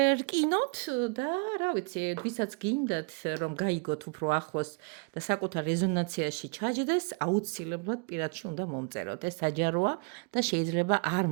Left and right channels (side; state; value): left; quieter; 33.5 dB